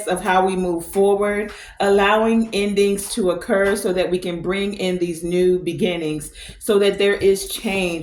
of how we move forward, allowing endings to occur so that we can bring in these new beginnings, so that there is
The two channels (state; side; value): identical; both; correlation 1.00